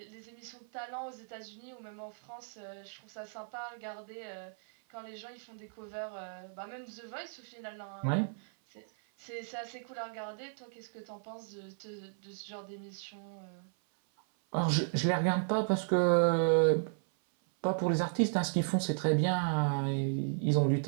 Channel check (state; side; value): silent; left; 55 dB below the other